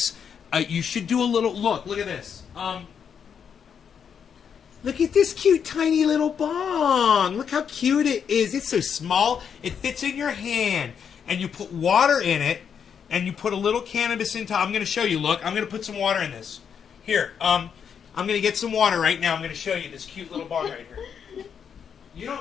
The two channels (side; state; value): right; quieter; 7.4 dB